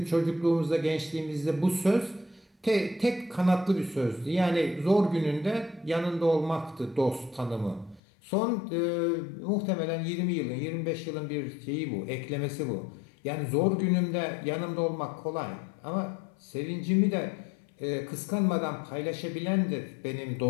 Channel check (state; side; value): drops out; right; at 8.0 s